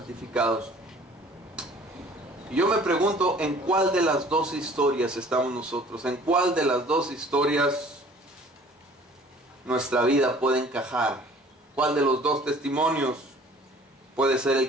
Y yo me pregunto, ¿en cuál de las 2 historias estamos nosotros? ¿En cuál de las 2 historias nuestra vida puede encajar? ¿Cuál de los 2 testimonios puede ser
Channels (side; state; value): both; normal; correlation 0.51